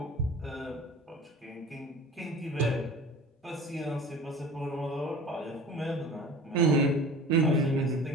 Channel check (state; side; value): normal; both; correlation 0.40